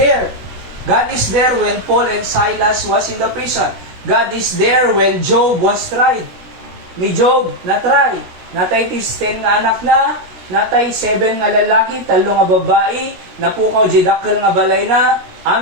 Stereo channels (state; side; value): late; left; 16 ms